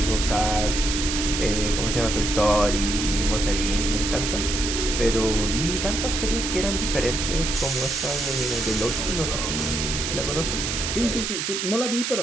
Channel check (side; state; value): right; noise; hiss, 2 dB below the sound